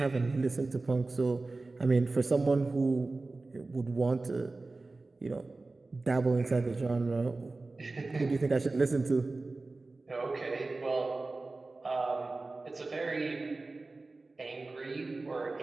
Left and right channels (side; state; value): left; quieter; 3.4 dB